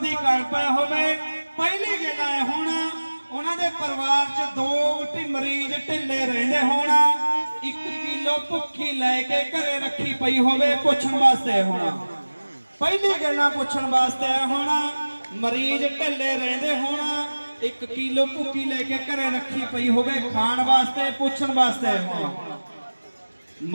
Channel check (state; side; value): inverted; both; correlation -1.00